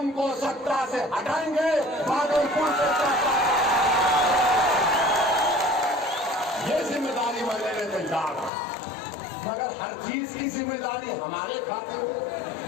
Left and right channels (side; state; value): right; drops out; at 8.5 s